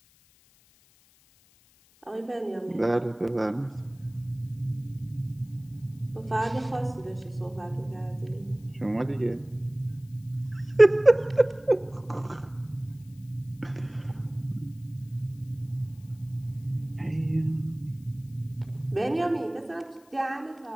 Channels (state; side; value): noise; left; hiss, 30 dB below the sound